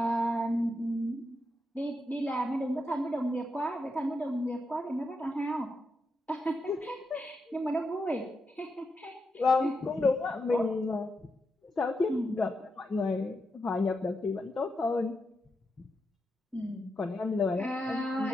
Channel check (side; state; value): both; normal; correlation 0.85